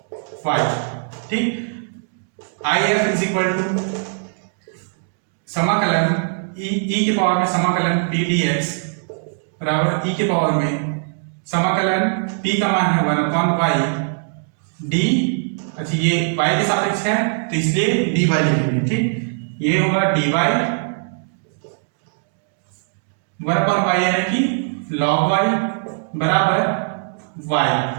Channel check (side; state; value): left; silent; digital silence